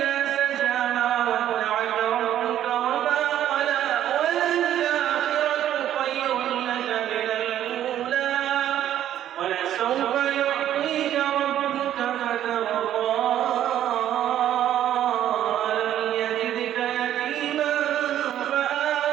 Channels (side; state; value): left; quieter; 11.4 dB